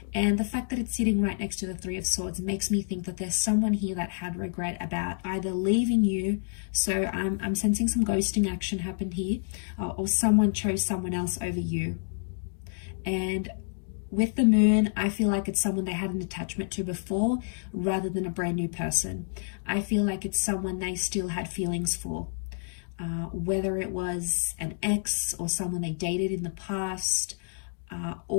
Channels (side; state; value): right; silent; digital silence